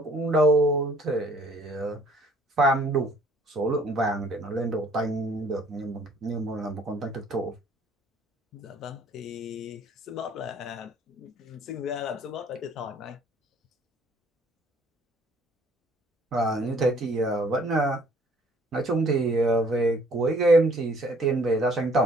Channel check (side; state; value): both; normal; correlation 0.59